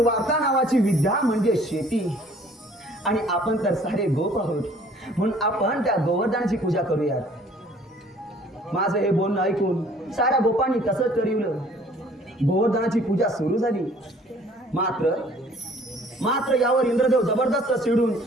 नावाची विद्या म्हणजे शेती, आणि आपण तर सारे गोप आहोत म्हणून आपण त्या गोवर्धनाची पूजा करूयात. माझं हे बोलणं ऐकून साऱ्या गोपांनी तसंच ठरवलं. गोवर्धनाची पूजा सुरू झाली. मात्र यावर इंद्रदेव जबरदस्त चिडून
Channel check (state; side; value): normal; both; correlation 0.55